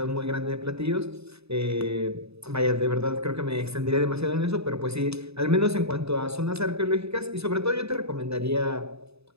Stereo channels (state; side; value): late; left; 0.79 ms